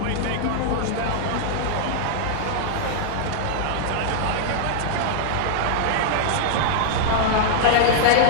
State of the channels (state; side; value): different; both; correlation -0.01